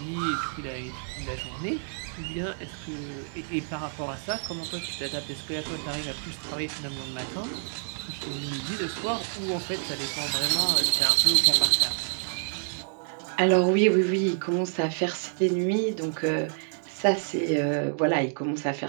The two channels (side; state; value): left; silent; digital silence